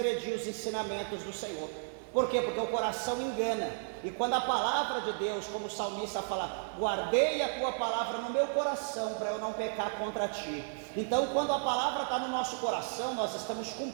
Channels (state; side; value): silent; left; 56 dB below the other